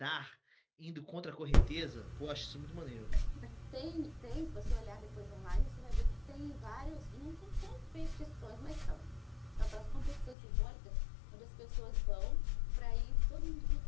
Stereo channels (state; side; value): drops out; right; at 10.4 s